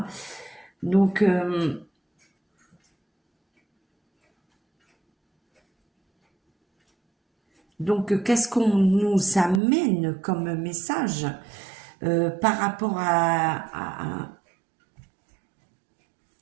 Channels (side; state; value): left; drops out; at 9.6 s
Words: Donc qu'est-ce qu'on nous amène comme message par rapport à